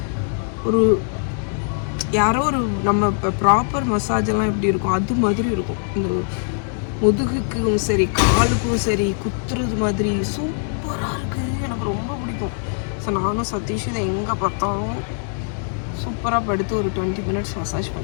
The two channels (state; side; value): silent; right; 64 dB below the other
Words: ஒரு யாரோ ஒரு நம்ம இப்போ ப்ராப்பர் மசாஜ் எல்லாம் எப்படி இருக்கும் அது மாதிரி இருக்கும். இந்த முதுகுக்கும் சரி காலுக்கும் சரி குத்துறது மாதிரி சூப்பராக இருக்குது. எனக்கு ரொம்ப பிடிக்கும். ஸோ நானும் சதீஷ் இதை எங்கே பார்த்தாலும் சூப்பராக படுத்து ஒரு 20 மினிட்ஸ் மசாஜ்